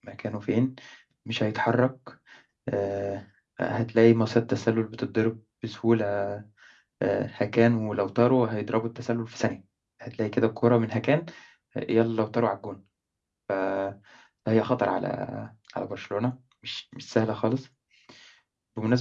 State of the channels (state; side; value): identical; both; correlation 1.00